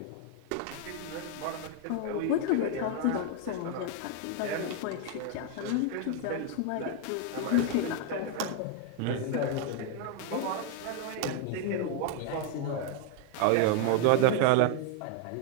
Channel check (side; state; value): both; different; correlation 0.00